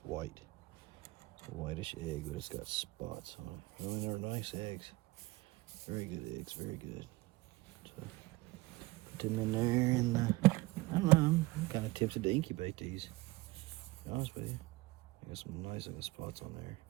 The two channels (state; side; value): quieter; left; 20.4 dB